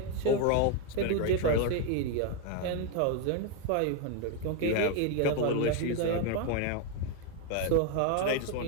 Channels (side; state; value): both; different; correlation 0.01